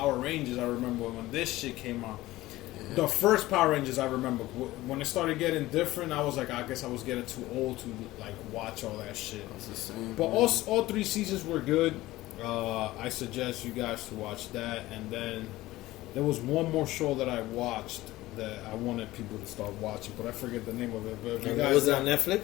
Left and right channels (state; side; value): quieter; right; 17.5 dB